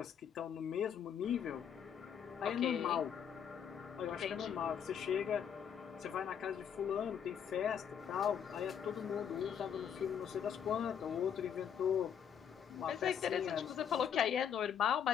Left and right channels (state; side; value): quieter; right; 8.2 dB